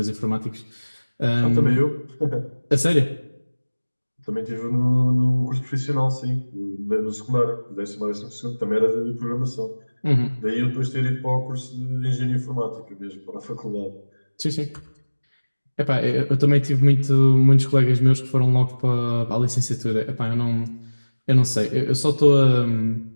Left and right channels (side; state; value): both; inverted; correlation -1.00